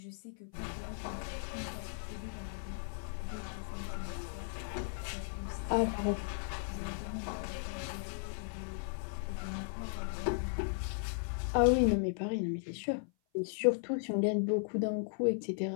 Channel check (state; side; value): silent; right; 53 dB below the other